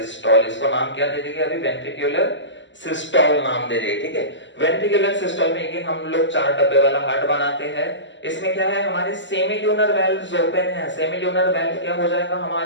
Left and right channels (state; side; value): late; right; 0.54 ms